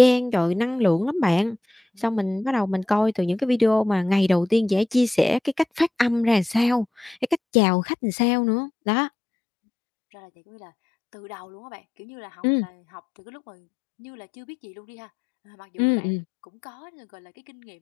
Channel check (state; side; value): drops out; right; at 7.4 s